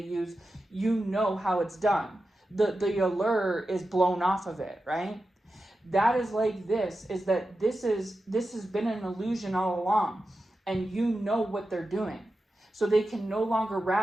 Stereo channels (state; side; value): normal; both; correlation 0.91